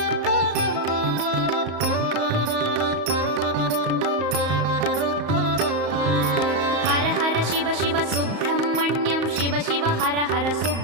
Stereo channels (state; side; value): late; left; 34 ms